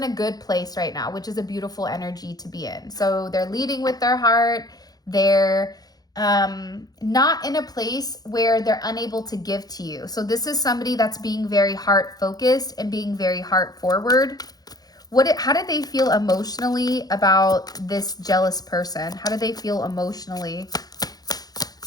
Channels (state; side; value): late; right; 0.19 ms